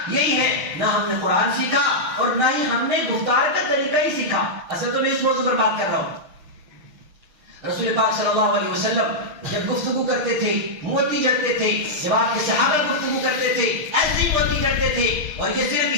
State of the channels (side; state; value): left; late; 6.7 ms